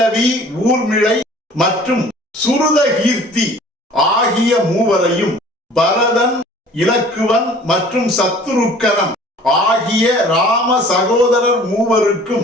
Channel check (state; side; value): normal; both; correlation 0.49